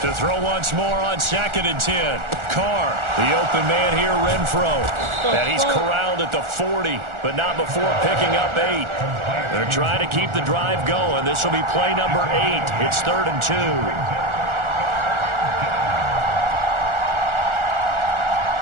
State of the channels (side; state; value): left; late; 1.4 ms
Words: To throw once more on 2nd and 10. Carr, the open man here, Renfro. And he's corralled at the 40, but not before picking up 8. They're trying to keep the drive going. This will be play number 8. It's 3rd and 2.